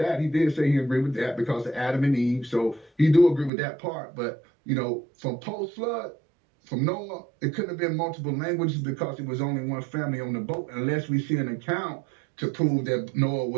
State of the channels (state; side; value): drops out; left; at 3.5 s